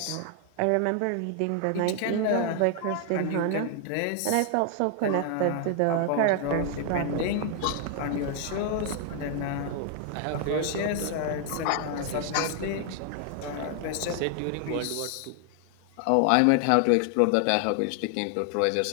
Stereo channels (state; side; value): different; both; correlation 0.00